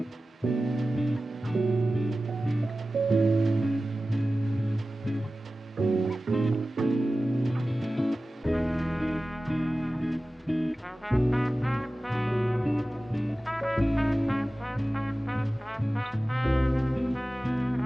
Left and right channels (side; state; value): both; normal; correlation 0.95